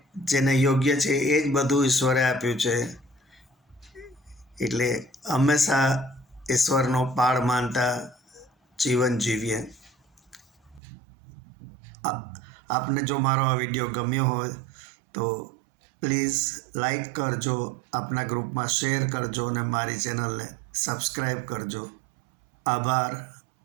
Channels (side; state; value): left; drops out; at 10.8 s